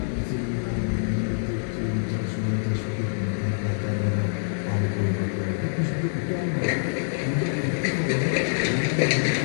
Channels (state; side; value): silent; right; digital silence